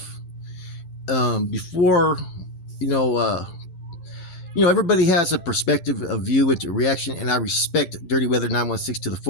before, everybody has a perspective, a view, into reaction, and I respect Dirty Weather 916 to the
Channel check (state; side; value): late; right; 12 ms